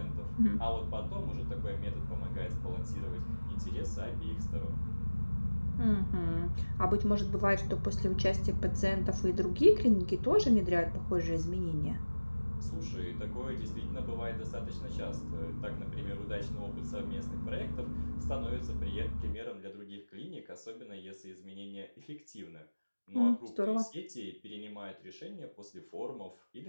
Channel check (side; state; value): both; inverted; correlation -1.00